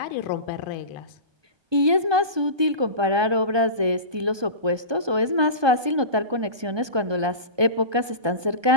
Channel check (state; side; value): late; left; 1.2 ms